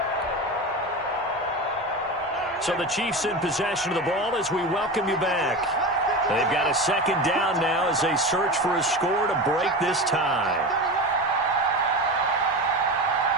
So the Chiefs in possession of the ball as we welcome you back. They've got a 2nd down now as they search for a score to break this tie.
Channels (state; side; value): normal; both; correlation 0.25